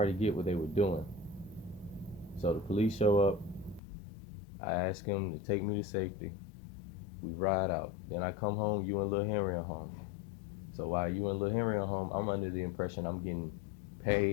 get what they were doing. So the police show up. I ask them to take me to safety. We ride out. Then I come home. You and Lil Henry are home. So while you and Lil Henry are home, I'm under the impression I'm getting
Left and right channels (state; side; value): drops out; right; at 3.8 s